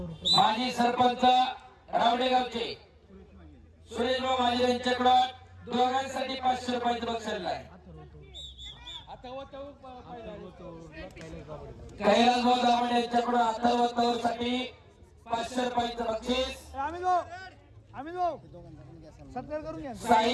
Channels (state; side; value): identical; both; correlation 1.00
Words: माजी सरपंच रावडेगावचे सुरेश भाऊ माझे यांच्याकडून दोघांसाठी 500 रुपयाचं बक्षीस आहे. कैलास भाऊ दामण यांच्याकडून अथर्व साठी 500 रुपयाचं बक्षीस. सत्कार करून घ्या.